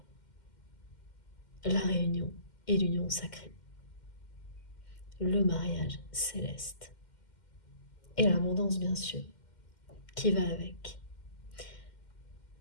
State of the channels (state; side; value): late; right; 2.1 ms